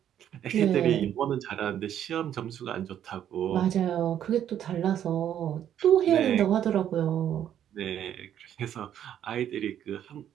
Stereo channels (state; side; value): quieter; left; 10.3 dB